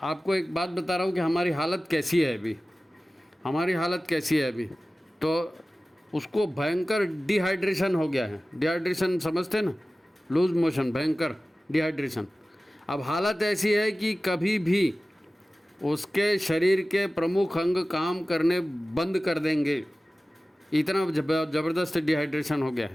आपको एक बात बता रहा हूँ कि हमारी हालत कैसी है अभी, हमारी हालत कैसी है अभी। तो उसको भयंकर डिहाइड्रेशन हो गया है। डिहाइड्रेशन समझते हैं ना, लूज मोशन, भयंकर डिहाइड्रेशन। अब हालत ऐसी है कि कभी भी उसके शरीर के प्रमुख अंग काम करने बंद कर देंगे, इतना ज़बरदस्त डिहाइड्रेशन हो गया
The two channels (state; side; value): normal; both; correlation 0.96